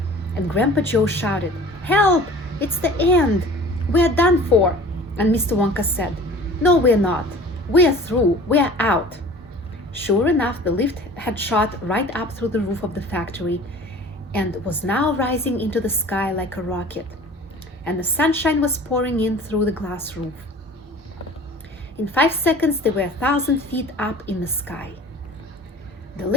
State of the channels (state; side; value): normal; both; correlation 0.44